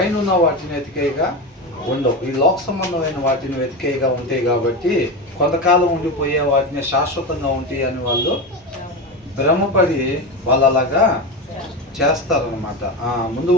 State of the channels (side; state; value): both; normal; correlation 0.20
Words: ఉన్న వాటిని వెతికేయగా ఉండవు, ఈ లోక సంబంధమైన వాటిని వెతికేయగా ఉంటాయి. కాబట్టి కొంతకాలం ఉండిపోయే వాటిని శాశ్వతంగా ఉంటాయి అని వాళ్ళు భ్రమపడి వాళ్ళు అలాగా చేస్తారనమాట. ముందు